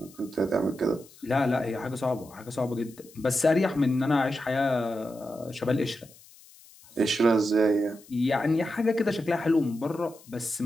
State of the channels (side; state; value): left; noise; hiss, 24 dB below the sound